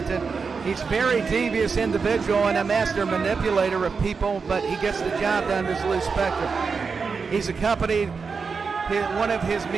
He's a very devious individual and a master manipulator of people, but he gets the job done as Lou Spector. He's accompanied one of his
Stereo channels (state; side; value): quieter; left; 5.2 dB